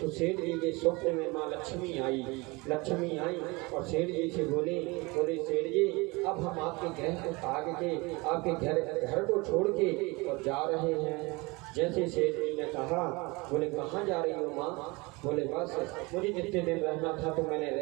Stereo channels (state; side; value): quieter; left; 25.1 dB